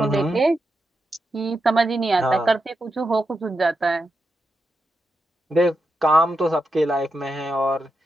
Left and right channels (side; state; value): both; normal; correlation 0.86